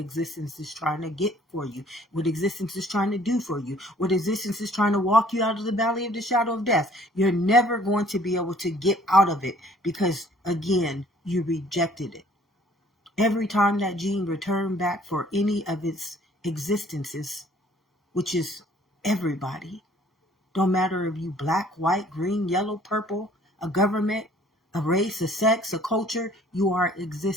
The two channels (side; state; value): both; normal; correlation 0.57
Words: is trying to get for you, what existence is trying to do for you, what existence is trying to walk you out of the valley of the shadow of death. You're never going to be able to get out of it because, again, you rejected it. Every time that gene returned back for any of its existences, which is everybody, don't matter if you black, white, green, yellow, purple, a government, a race, a sex, a culture, you are